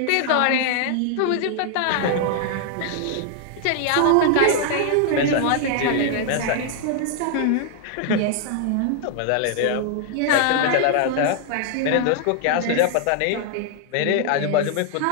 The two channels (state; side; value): different; both; correlation 0.00